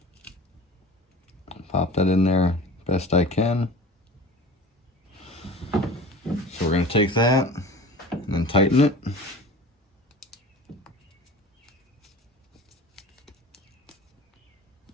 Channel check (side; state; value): both; normal; correlation 0.38